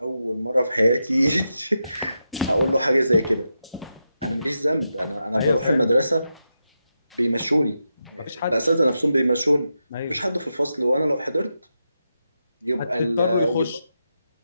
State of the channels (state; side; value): inverted; both; correlation -0.87